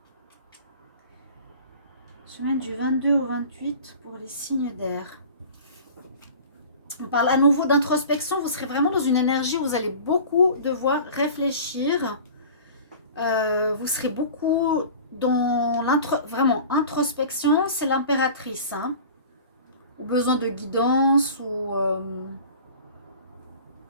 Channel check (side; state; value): both; inverted; correlation -0.41